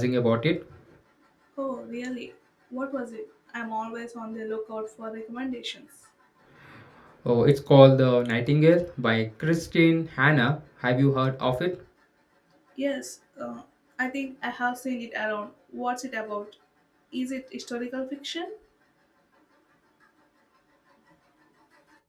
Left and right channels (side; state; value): both; identical; correlation 1.00